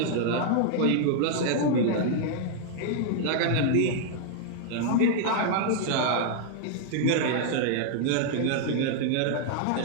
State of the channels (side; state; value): both; different; correlation -0.01